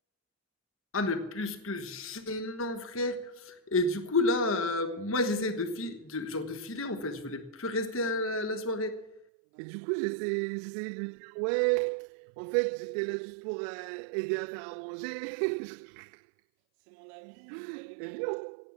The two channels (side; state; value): left; drops out; at 9.2 s